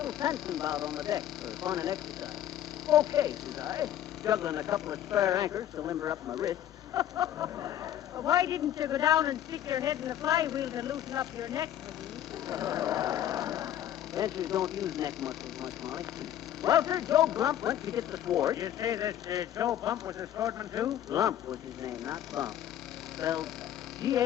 fencing bout on the deck for fun and exercise? Okay, says I, juggling a couple of spare anchors to limber up my wrist. Well, why didn't you go down and stick your head in the flywheel to loosen up your neck, McGee? Fencers don't use neck muscles much, Molly. Well, sir, Joe Glump went to get the sword. You say this Joe Bump was a swordman, too? Glump was his name, not Bump. Spelled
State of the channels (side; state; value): right; quieter; 11.4 dB